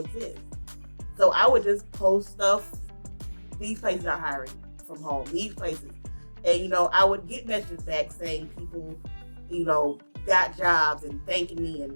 So I would just post stuff. These places are hiring from home. These places. And, I would get messages back saying people, got jobs and thanking me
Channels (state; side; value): inverted; both; correlation -1.00